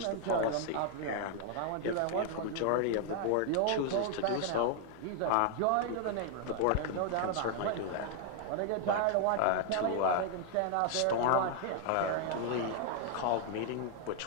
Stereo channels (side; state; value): both; different; correlation 0.00